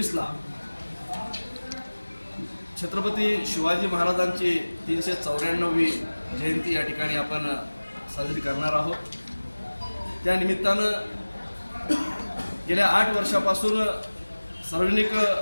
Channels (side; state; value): both; inverted; correlation -1.00